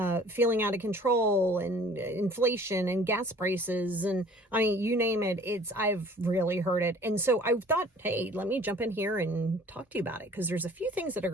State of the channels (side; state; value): both; normal; correlation 0.51